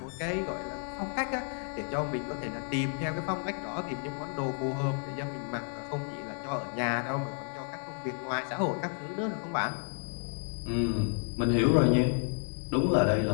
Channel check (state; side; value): silent; right; 57 dB below the other